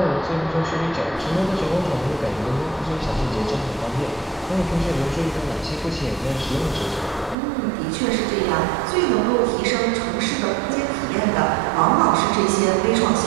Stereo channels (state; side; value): drops out; left; at 7.4 s